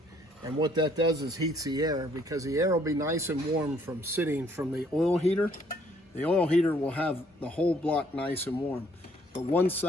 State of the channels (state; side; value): normal; both; correlation 0.64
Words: And what that does is heats the air, because the air will be nice and warm from sitting from the oil heater. The oil heater will have the whole block nice and warm. But once